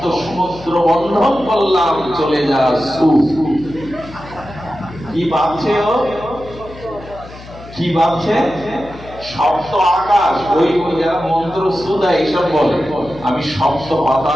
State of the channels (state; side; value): noise; left; hum, 17 dB below the sound